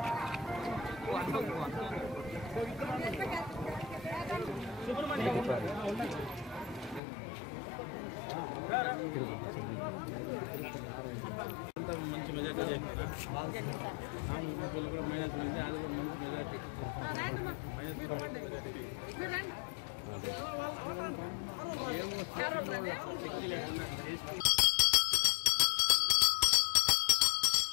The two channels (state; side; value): drops out; right; at 7.0 s